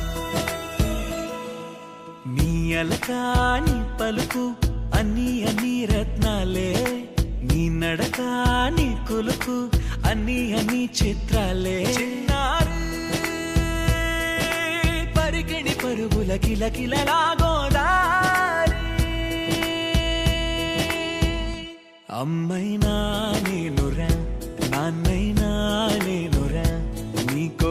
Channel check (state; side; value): identical; both; correlation 1.00